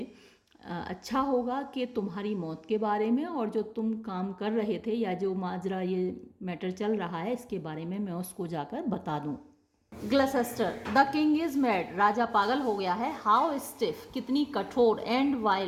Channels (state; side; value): identical; both; correlation 1.00